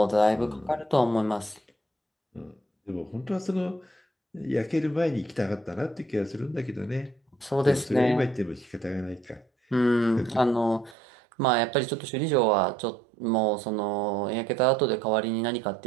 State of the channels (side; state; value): left; drops out; at 11.0 s